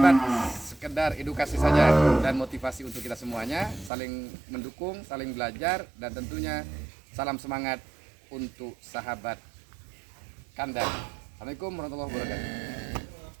Sekedar edukasi saja dan motivasi untuk kita semuanya, saling mendukung, saling belajar, dan tentunya salam semangat untuk sahabat kandang Assalamualaikum warahmatullahi wabarakatuh.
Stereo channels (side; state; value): left; drops out; at 3.9 s